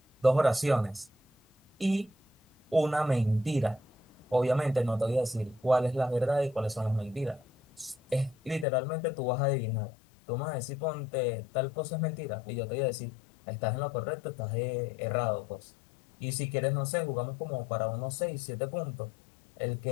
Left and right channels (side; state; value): right; drops out; at 8.7 s